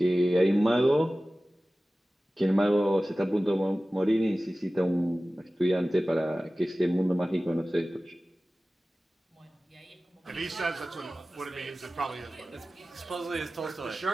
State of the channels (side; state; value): both; normal; correlation 0.97